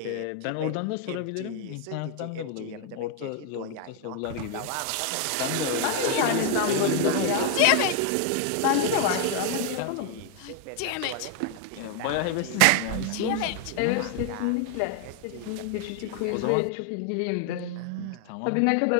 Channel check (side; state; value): both; different; correlation 0.00